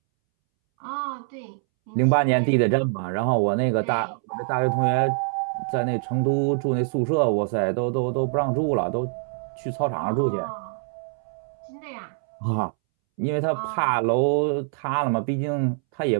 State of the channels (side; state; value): left; silent; 62 dB below the other